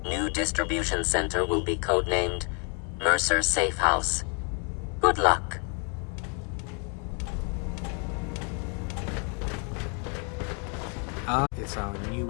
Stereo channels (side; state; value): right; quieter; 38.3 dB